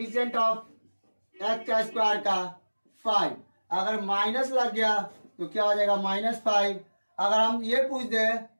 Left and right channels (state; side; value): inverted; both; correlation -1.00